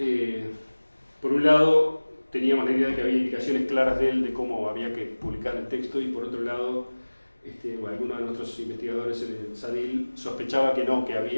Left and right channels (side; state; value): both; inverted; correlation -1.00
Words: por un lado teníamos la idea de que había indicaciones claras de él de cómo había que publicar el texto, y por otro lado algunos de nuestros investigadores en el SADIL sospechaba que no, que